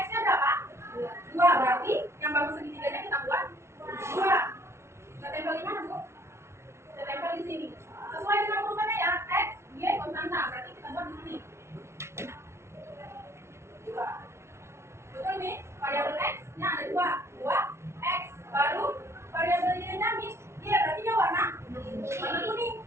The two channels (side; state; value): left; late; 0.13 ms